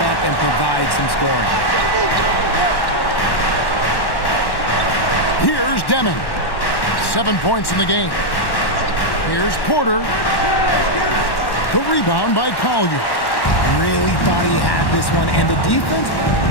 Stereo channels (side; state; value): right; late; 1.1 ms